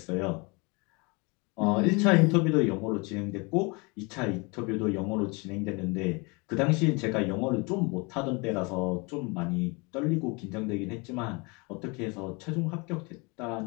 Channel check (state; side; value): quieter; right; 28.8 dB